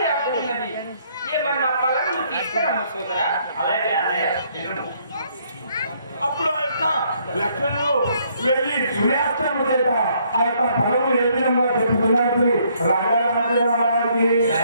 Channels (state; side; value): inverted; both; correlation -0.68